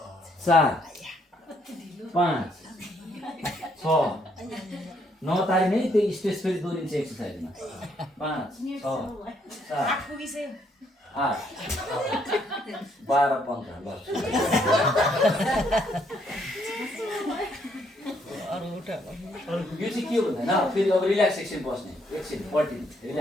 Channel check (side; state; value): both; normal; correlation 0.71